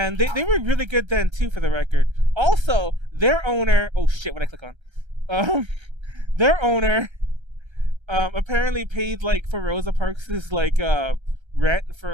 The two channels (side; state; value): left; late; 1.3 ms